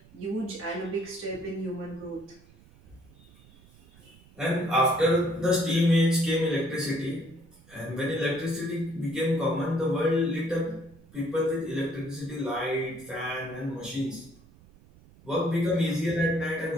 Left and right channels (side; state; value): right; noise; rumble, 25 dB below the sound